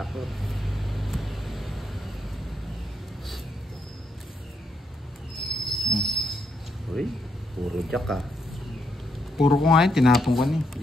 Uy, puro jack ah. Puro ko nga yun, tinapon ko na eh.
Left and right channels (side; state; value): both; normal; correlation 0.79